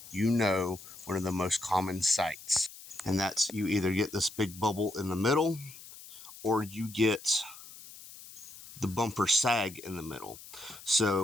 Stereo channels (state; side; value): noise; left; hiss, 17 dB below the sound